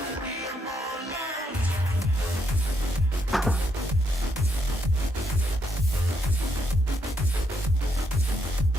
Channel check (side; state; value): both; normal; correlation 0.77